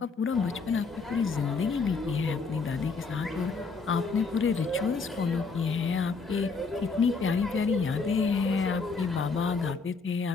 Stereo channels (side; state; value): right; quieter; 4.6 dB